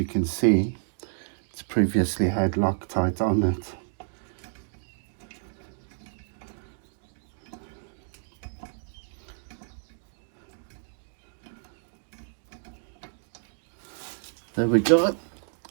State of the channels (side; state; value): left; silent; digital silence